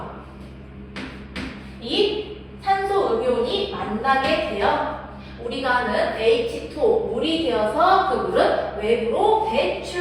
이 산소 음이온이 만나게 되어 우리가 아는 H2O 물이 되어서 그 물은 외부로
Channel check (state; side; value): identical; both; correlation 1.00